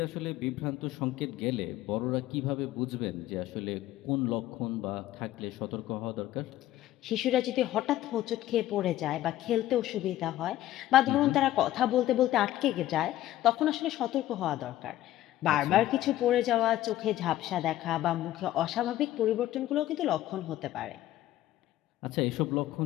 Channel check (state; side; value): quieter; right; 14.2 dB